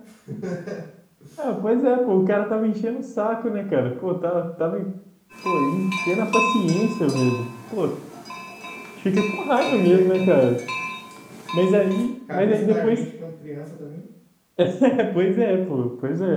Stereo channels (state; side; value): identical; both; correlation 1.00